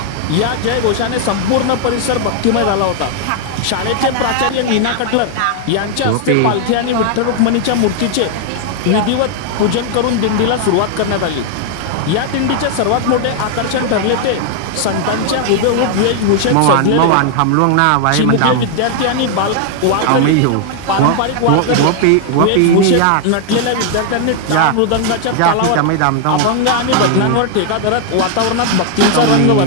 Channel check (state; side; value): different; both; correlation 0.00